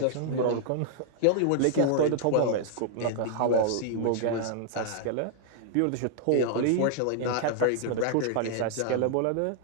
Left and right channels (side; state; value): both; different; correlation 0.00